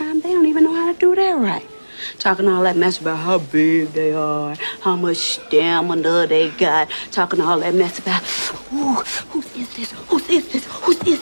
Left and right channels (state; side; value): inverted; both; correlation -1.00